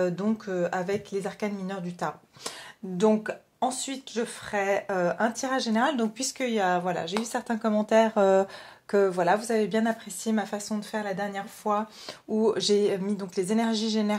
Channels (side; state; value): both; identical; correlation 1.00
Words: les arcanes mineures du tarot. Donc ensuite je ferai un tirage général, donc puisqu'il y a, voilà, j'ai eu certains commentaires que voilà, vous avez bien apprécié ma façon de faire la dernière fois où j'ai mis donc les énergies